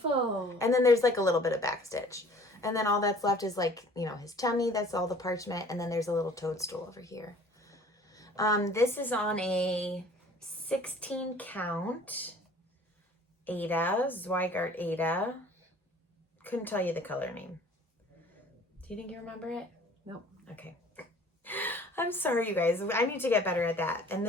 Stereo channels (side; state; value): both; normal; correlation 0.51